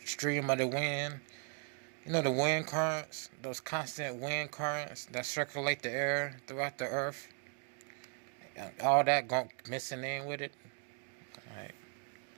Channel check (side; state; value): left; quieter; 38.7 dB